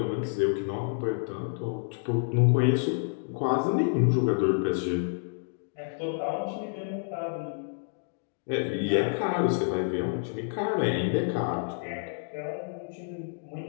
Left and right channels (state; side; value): silent; right; digital silence